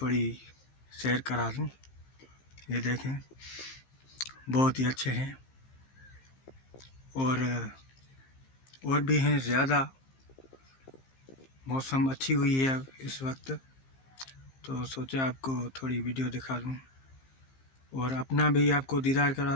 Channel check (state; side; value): late; right; 15 ms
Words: शेयर करा दूं। ये देखें, बहुत ही अच्छे हैं और भी हैं ज़्यादा। मौसम अच्छी हुई है इस वक्त, तो सोचा आपको थोड़ी वीडियो दिखा दूं और अपना भी आपको दीदार करा